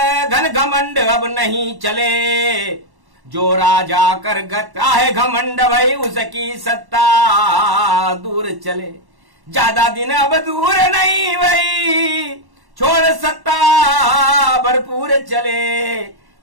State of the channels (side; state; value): left; late; 1.1 ms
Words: घन घमंड अब नहीं चले। जो राजा कर गता है घमंड भाई उसकी सत्ता दूर चले। ज्यादा दिन अब दूर नहीं भाई, छोड़ सत्ता भरपूर चले।